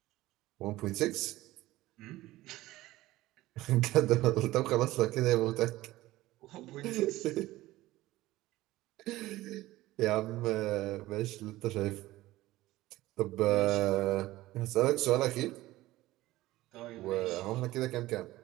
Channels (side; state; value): left; quieter; 17.3 dB